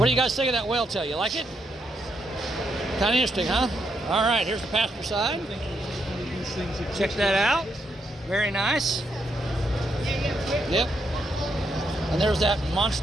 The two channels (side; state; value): both; normal; correlation 0.79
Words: do you guys think of that whale tail? You like it? Kind of interesting, huh? All right, here's the passenger side. Check that out. Very nice. Yep. And there's that